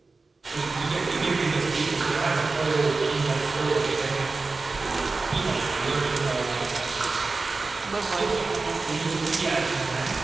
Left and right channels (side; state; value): left; quieter; 3.8 dB